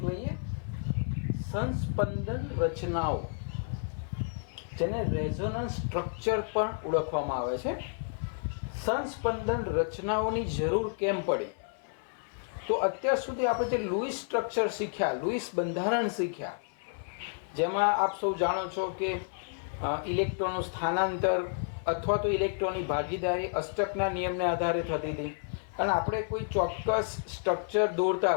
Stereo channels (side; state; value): right; silent; 57 dB below the other